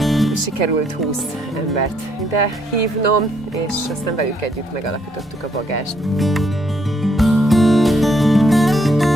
Sikerült 20 embert ide hívnom, és aztán velük együtt megalapítottuk a Bagást.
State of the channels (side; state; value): both; normal; correlation 0.71